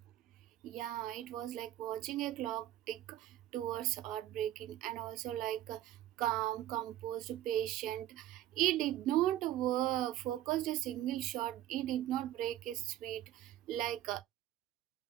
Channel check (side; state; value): left; quieter; 13.2 dB